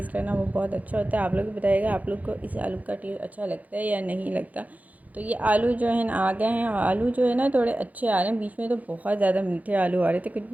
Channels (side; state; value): left; late; 0.077 ms